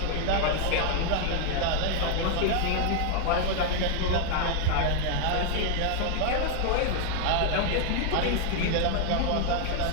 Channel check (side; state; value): both; different; correlation 0.00